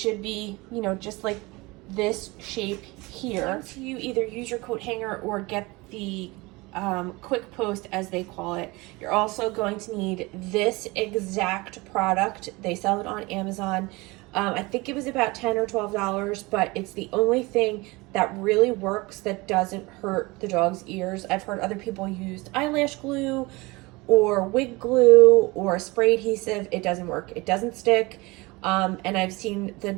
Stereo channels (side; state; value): left; quieter; 23.6 dB